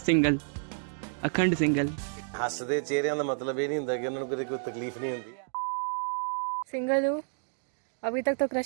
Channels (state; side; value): silent; left; digital silence